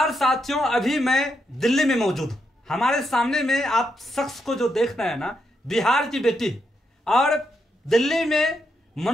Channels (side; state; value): both; normal; correlation 0.81